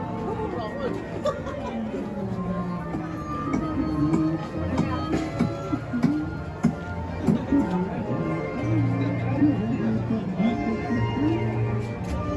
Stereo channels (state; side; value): identical; both; correlation 1.00